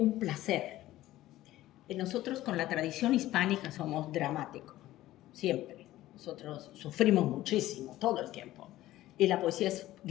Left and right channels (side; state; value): right; quieter; 15.3 dB